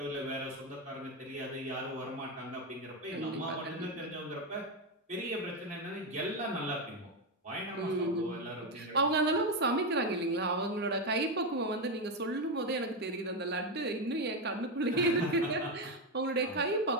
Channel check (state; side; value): normal; both; correlation 0.09